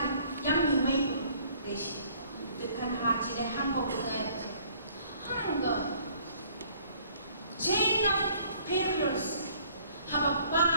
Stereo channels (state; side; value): inverted; both; correlation -0.58